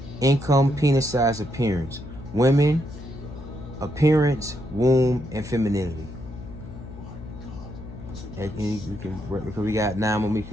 income, penis size, appearance. Women, appearance, womb, and femininity. And you can, because we got 9 more minutes,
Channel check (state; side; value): noise; left; hum, 13 dB below the sound